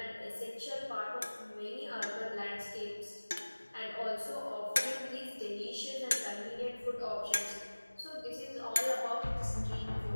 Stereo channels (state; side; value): inverted; both; correlation -1.00